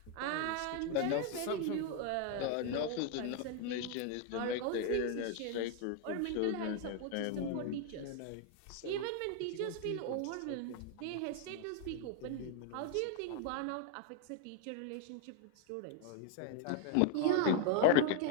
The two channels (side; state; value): both; different; correlation 0.01